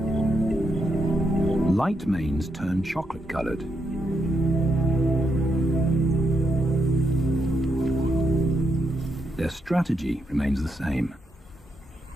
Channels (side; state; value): both; normal; correlation 0.81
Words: Light manes turn chocolate-colored. Their strategy remains the same.